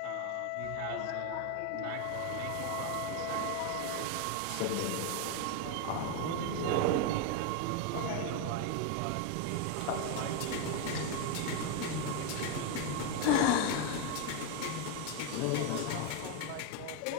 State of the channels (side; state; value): both; different; correlation 0.01